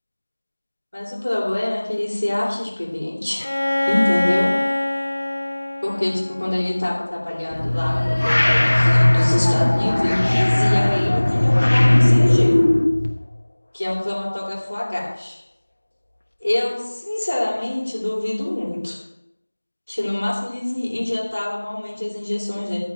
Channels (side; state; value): both; inverted; correlation -1.00